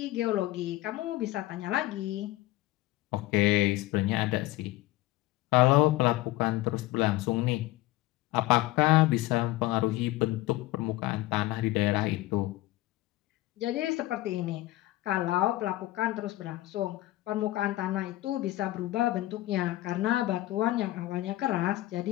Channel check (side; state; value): right; quieter; 17.3 dB